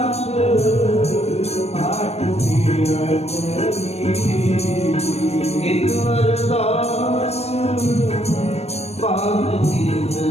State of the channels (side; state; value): right; late; 0.30 ms